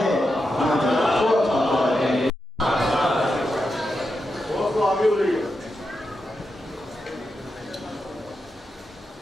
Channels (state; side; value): normal; both; correlation 0.87